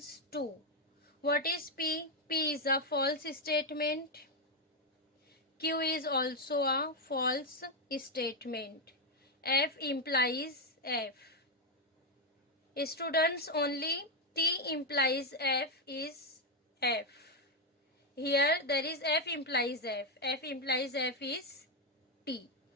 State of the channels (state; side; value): normal; both; correlation 0.04